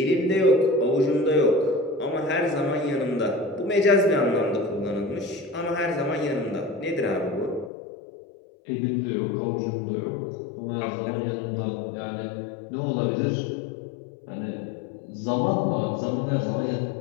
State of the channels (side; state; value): right; drops out; at 7.7 s